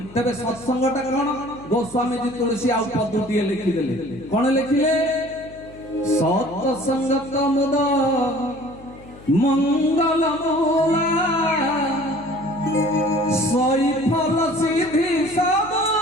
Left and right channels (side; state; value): left; noise; hum, 20 dB below the sound